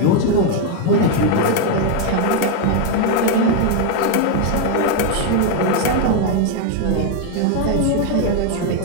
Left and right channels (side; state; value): both; different; correlation 0.01